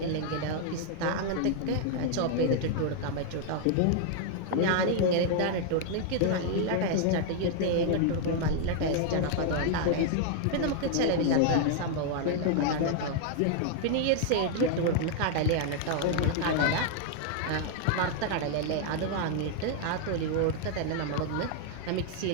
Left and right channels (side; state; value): both; different; correlation 0.00